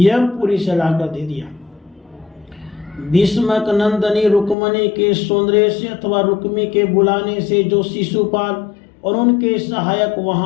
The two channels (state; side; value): drops out; right; at 4.5 s